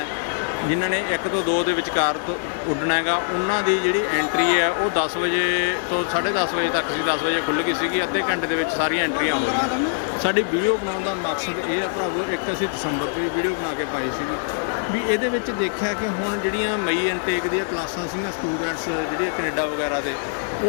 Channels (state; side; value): silent; right; digital silence